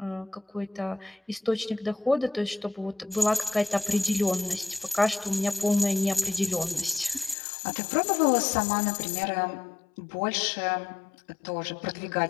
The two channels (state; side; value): drops out; right; at 7.4 s